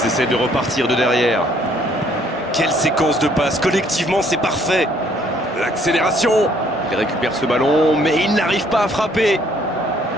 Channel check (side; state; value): both; normal; correlation 0.63